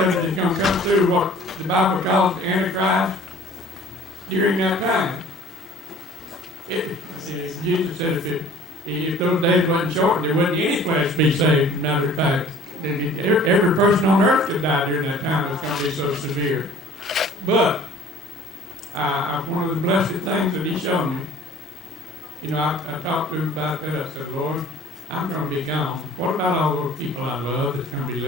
of it is going to come through what the Bible calls the Antichrist during that time. Jesus said if those days wasn't short, there wouldn't any flesh be saved. Matter of fact, every person on earth could die during that time. It's going to be so severe. But one of the blessed things that he showed me, I talked to him about that. I said, Lord, I'm going to be gone. What about all those people I love that's going to be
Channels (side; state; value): both; normal; correlation 0.50